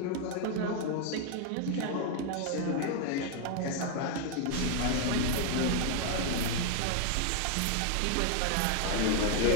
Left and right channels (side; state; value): both; different; correlation 0.00